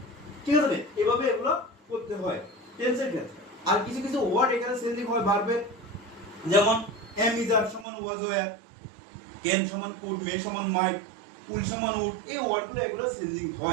ঠিক আছে, এভাবে এগুলো করতে হয় টেন্সের ক্ষেত্রে। আর কিছু কিছু ওয়ার্ড এখানে চেঞ্জিং হয় ভার্বের, যেমন এম ইজ আর সমান ওয়াজ ওয়্যার, ক্যান সমান কুড, মে সমান মাইট, উইল সমান উড, এই ওয়ার্ডগুলো এগুলো চেঞ্জিং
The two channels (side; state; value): left; drops out; at 7.9 s